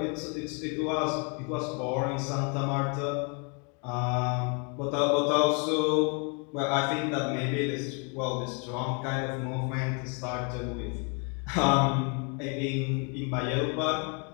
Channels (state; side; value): quieter; right; 36.1 dB